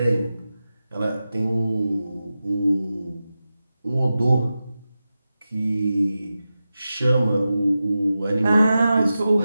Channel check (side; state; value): both; inverted; correlation -0.93